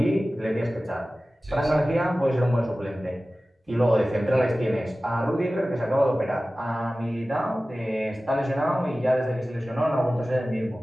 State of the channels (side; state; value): both; normal; correlation 0.96